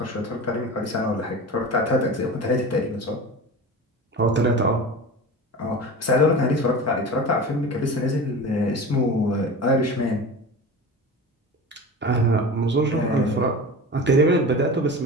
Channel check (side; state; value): both; normal; correlation 0.32